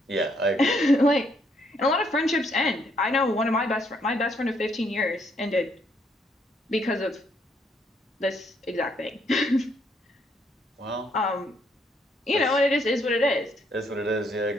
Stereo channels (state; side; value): normal; both; correlation 0.71